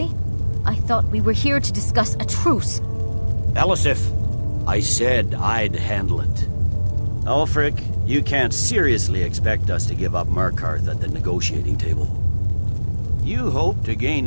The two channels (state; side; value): inverted; both; correlation -1.00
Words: I thought we were here to discuss a truce. Elisif, I said I'd handle it. Ulfric, you can't seriously expect us to give up Markarth at the negotiating table. You hope to gain